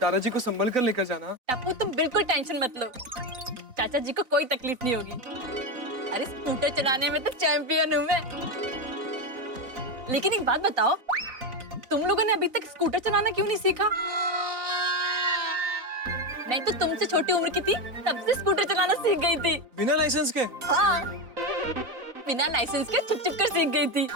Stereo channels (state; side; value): late; left; 4.0 ms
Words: दादाजी को संभल कर लेकर जाना। टप्पू तुम बिल्कुल टेंशन मत लो, चाचा जी को कोई तकलीफ नहीं होगी। अरे स्कूटर चलाने में तो चैंपियन हूँ मैं। लेकिन एक बात बताओ, तुम लोगों ने अभी तक स्कूटर चलाना क्यों नहीं सीखा? मैं तो तुमसे छोटी उम्र की थी तब से स्कूटर चलाना सीख गई थी। बिना लाइसेंस के? हाँ, बिना लाइसेंस के छुप कर सीख गई थी,